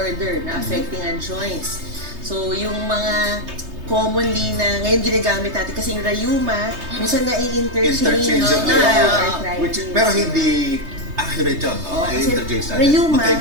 na affecting ang joints. So yung mga commonly na ngayon ginagamit natin kasi yung rayuma, minsan na-i-interchange Interchangeable. arthritis. Which, pero hindi accurate yun. No? Oo, kasi I-interchange natin. rayuma,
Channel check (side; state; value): left; late; 3.2 ms